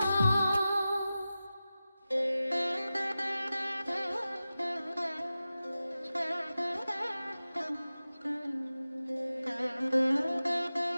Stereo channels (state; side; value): inverted; both; correlation -0.95